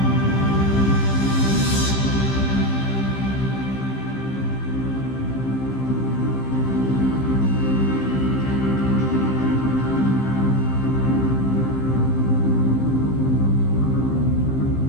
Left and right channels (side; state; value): right; late; 15 ms